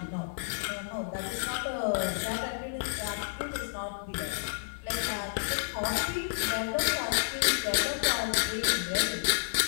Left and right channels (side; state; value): right; silent; 57 dB below the other